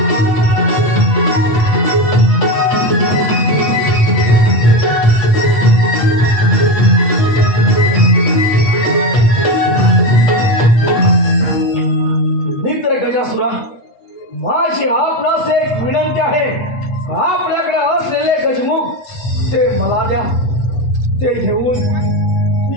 मित्र गजासुरा, माझी आपणास एक विनंती आहे. आपल्याकडे असलेले गजमुख ते मला द्या. ते घेऊन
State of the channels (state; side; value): late; right; 8.1 ms